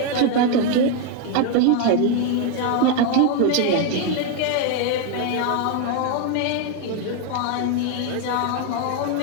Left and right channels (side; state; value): both; different; correlation 0.01